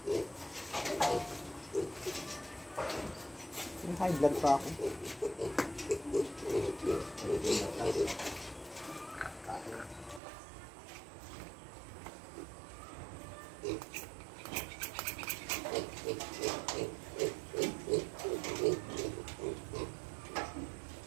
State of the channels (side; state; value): left; drops out; at 10.2 s